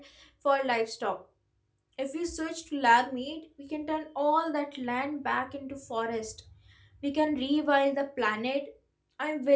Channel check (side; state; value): both; identical; correlation 1.00